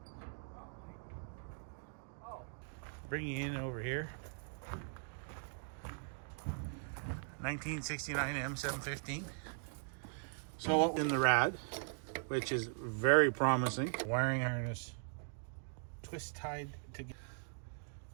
Bring you in over here. 1969 M715. So in the rad, which is very promising. Wiring harness, twist tied together.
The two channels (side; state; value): left; silent; digital silence